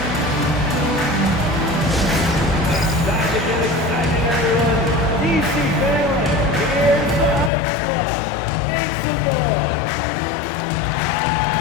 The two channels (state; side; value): drops out; right; at 7.5 s